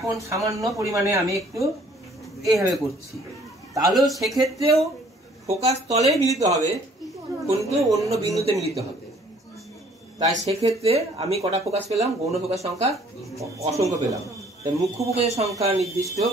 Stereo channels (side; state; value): both; normal; correlation 0.58